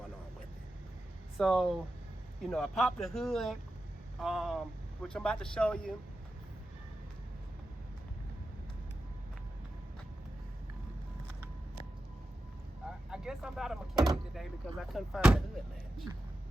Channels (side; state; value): both; normal; correlation 0.91